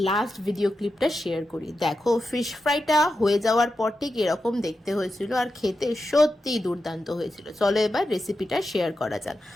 লাস্ট ভিডিও ক্লিপটা শেয়ার করি। দেখো, ফিশ ফ্রাইটা হয়ে যাওয়ার পর ঠিক এরকম দেখতে হয়েছিল আর খেতে সত্যিই দুর্দান্ত হয়েছিল। চলো এবার রেসিপিটা শেয়ার করা যাক।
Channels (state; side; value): normal; both; correlation 0.90